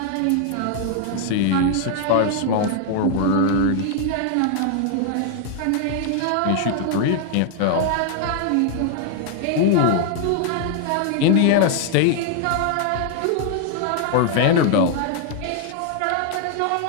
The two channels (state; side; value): different; both; correlation 0.00